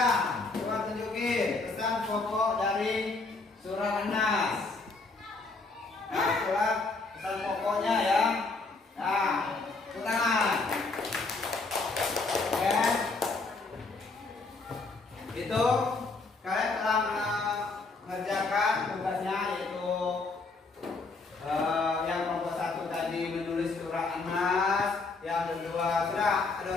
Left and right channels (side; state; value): right; quieter; 3.7 dB